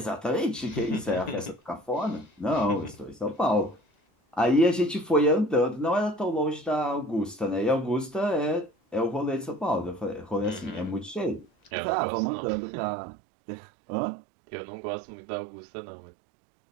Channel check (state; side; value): drops out; left; at 11.7 s